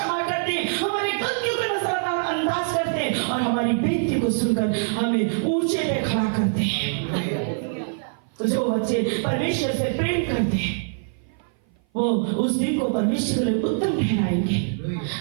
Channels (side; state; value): left; silent; 57 dB below the other